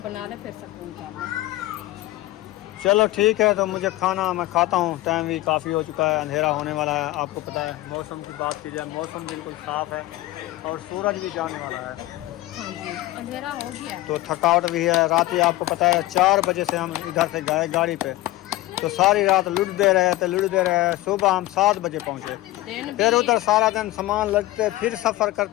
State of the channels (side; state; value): right; quieter; 17.2 dB